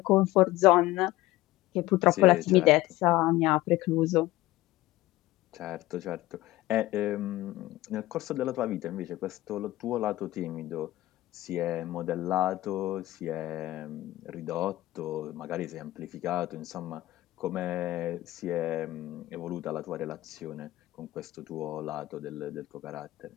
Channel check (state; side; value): quieter; right; 17.3 dB